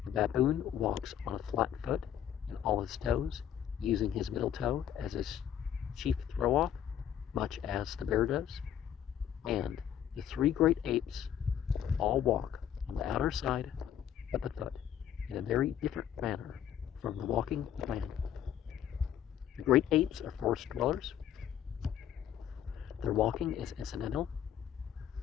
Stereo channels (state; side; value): quieter; right; 9.9 dB